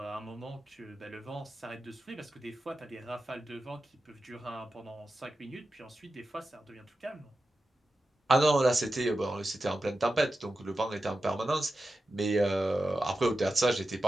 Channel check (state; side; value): normal; both; correlation 0.91